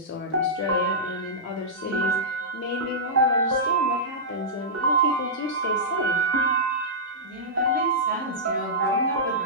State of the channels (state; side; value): normal; both; correlation -0.15